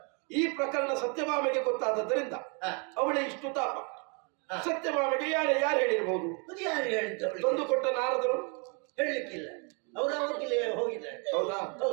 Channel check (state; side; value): quieter; left; 35.6 dB